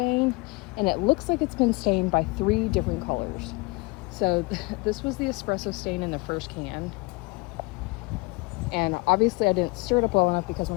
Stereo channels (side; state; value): right; quieter; 25.7 dB